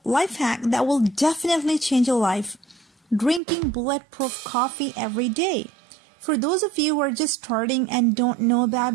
life hack that will definitely change your life. Drinking bulletproof coffee every day. For those of you who are just starting and don't know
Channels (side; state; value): left; drops out; at 3.4 s